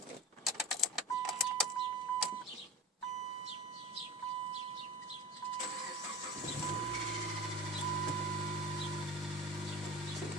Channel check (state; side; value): normal; both; correlation 0.30